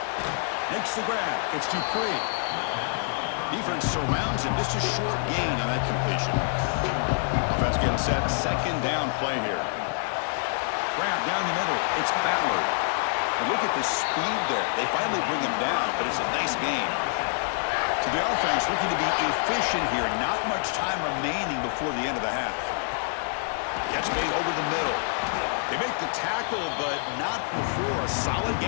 Makes the grab. It's Dupree. Defense surrounds him. Just a short gain on that completion. Offense getting set. Second down play here. Grab down the middle. It's Ballard. And look at the speed there. They finally bring him down, but it's a nice gain. So the offense looking to be efficient here. Not much time remaining before the end of the half. Catch made over the middle. They make the tackle, but not before a solid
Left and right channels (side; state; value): right; silent; 60 dB below the other